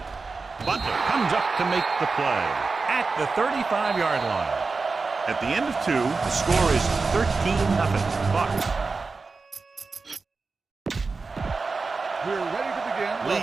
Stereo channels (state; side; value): quieter; left; 4.2 dB